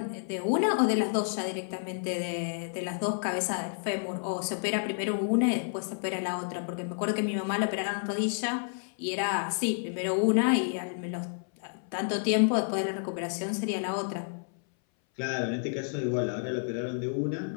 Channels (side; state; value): right; silent; 58 dB below the other